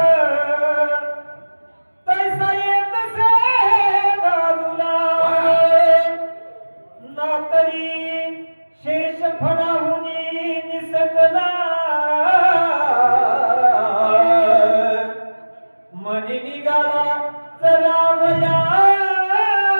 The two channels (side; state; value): both; inverted; correlation -1.00